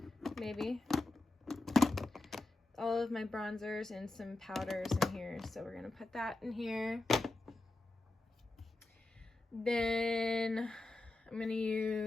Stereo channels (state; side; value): quieter; right; 3.1 dB